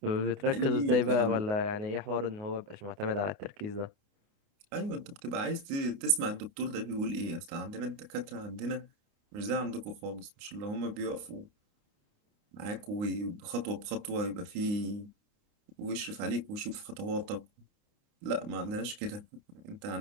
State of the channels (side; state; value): left; late; 29 ms